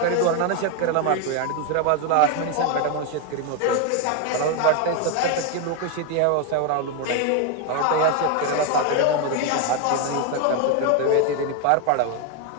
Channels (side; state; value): both; different; correlation 0.01